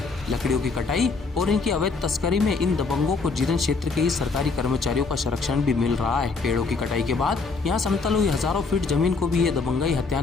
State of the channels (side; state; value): right; quieter; 4.2 dB